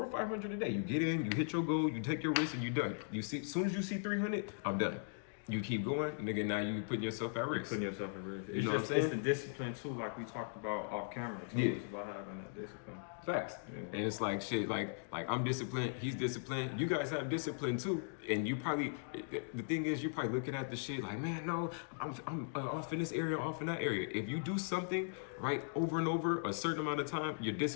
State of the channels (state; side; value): silent; right; digital silence